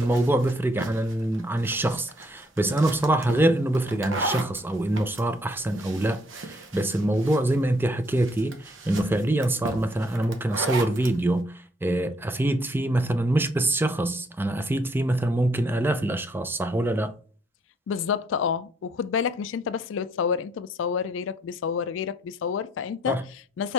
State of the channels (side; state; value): both; normal; correlation 0.69